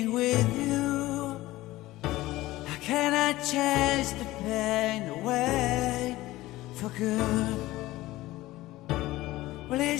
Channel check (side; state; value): right; quieter; 17.6 dB